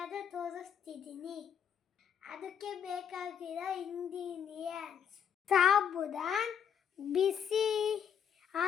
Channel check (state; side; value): quieter; right; 8.1 dB